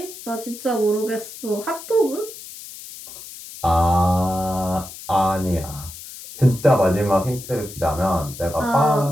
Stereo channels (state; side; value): noise; left; hiss, 14 dB below the sound